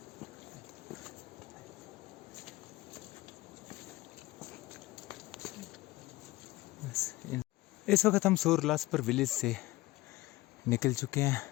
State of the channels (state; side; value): quieter; right; 19.4 dB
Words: इस वक्त हम सोरलासपर विलेज से निकल चुके हैं।